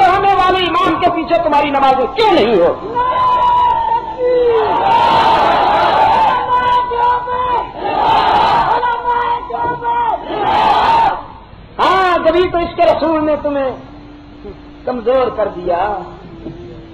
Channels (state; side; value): identical; both; correlation 1.00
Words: ہونے والے امام کے پیچھے تمہاری نمازیں کیوں نہیں ہوتی؟ ہاں جبھی تو اس کے رسول نے تمہیں کمزور کر دیا.